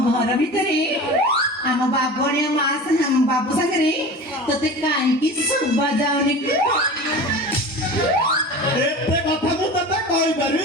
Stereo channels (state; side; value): normal; both; correlation 0.34